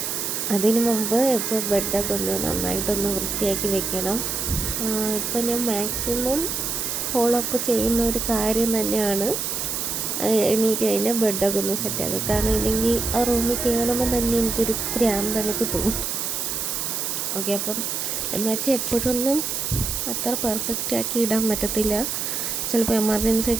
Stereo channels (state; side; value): noise; right; hiss, 2 dB below the sound